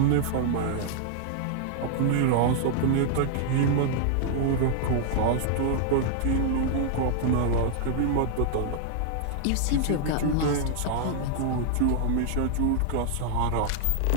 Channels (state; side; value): different; both; correlation -0.01